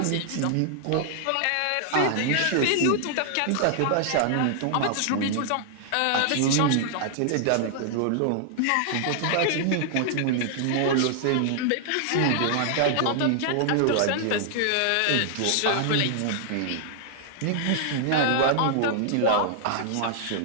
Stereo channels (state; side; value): different; both; correlation -0.01